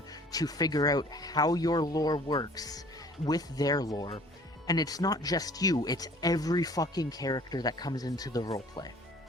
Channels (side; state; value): both; normal; correlation 0.52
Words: to figure out how your lore works with their lore. And it's not just you, it's every fucking character that comes into the roleplay.